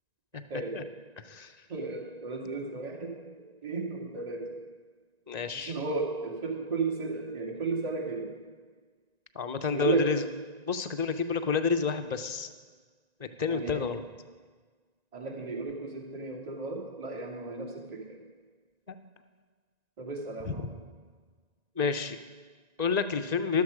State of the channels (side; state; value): left; late; 1.9 ms